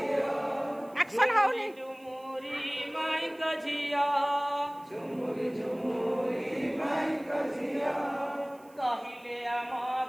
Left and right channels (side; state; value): right; noise; hiss, 28 dB below the sound